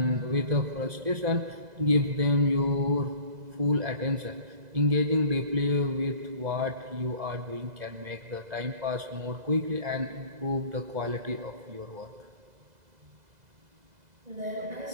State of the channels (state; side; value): late; left; 2.0 ms